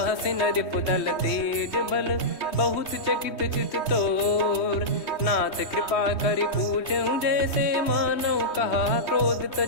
सिन रिपुदल तेज बल, बहुत चकित चित तोर, नाथ कृपा करि पूछऊं जैसे, मानव कहा क्रोध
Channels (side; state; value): right; late; 3.2 ms